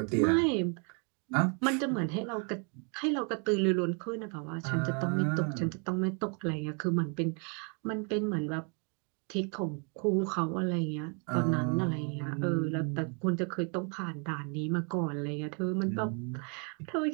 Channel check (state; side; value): quieter; left; 37.1 dB